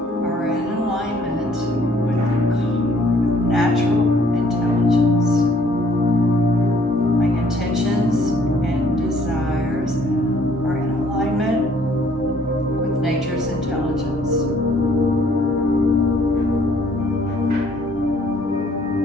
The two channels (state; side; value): normal; both; correlation 0.61